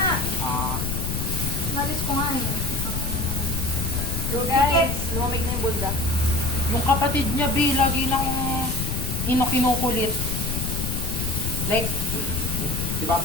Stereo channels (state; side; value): noise; left; rumble, 2 dB below the sound